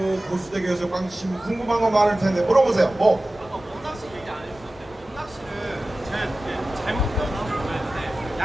고수대교에서 꽝치시면 궁금한 거 많을 텐데 물어보세요. 뭐? 낚시 얘기 안 해주셨어요. 낚시를 제가 잘못 배웠는지 모르겠는데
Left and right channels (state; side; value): normal; both; correlation 0.96